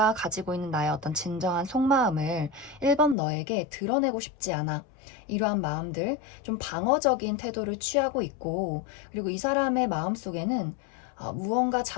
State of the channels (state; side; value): drops out; right; at 3.2 s